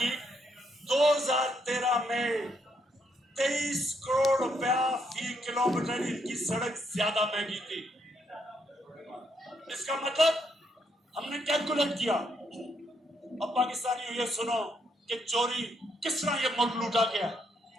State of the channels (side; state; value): both; normal; correlation 0.75